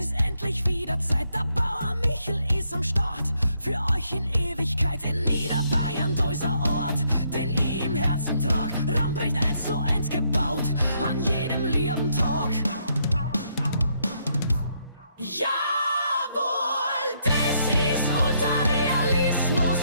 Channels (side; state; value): both; inverted; correlation -0.74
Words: endlich wieder Zeit. Der Bauer Michel ist am Start, für euch in Ewigkeit in Niederbayern, dieser Ort, den ich im Herzen trag. Ramprecht 1:1 gebaut, an jedem lieben Tag. Jawohl, das ist Ultrarealismus,